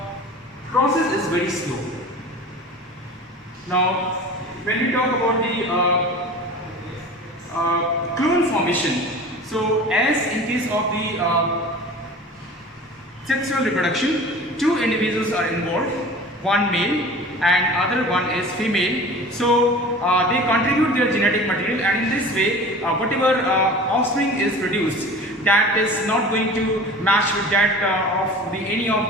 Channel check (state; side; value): normal; both; correlation 0.39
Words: process is very slow. Now when we talk about the clone formation, so as in case of the sexual reproduction, two individuals are involved, one male and other one is female. So they contribute their genetic material, and in this way whatever offspring is produced, that is not going to match with that of the any of